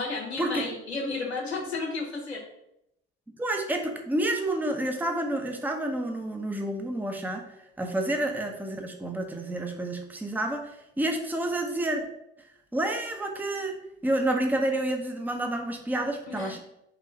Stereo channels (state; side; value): normal; both; correlation 0.62